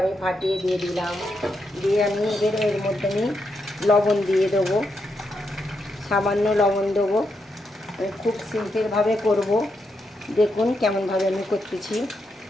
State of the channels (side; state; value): both; normal; correlation 0.82